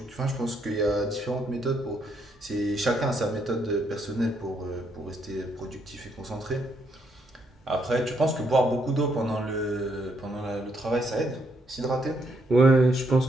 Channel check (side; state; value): both; normal; correlation 0.74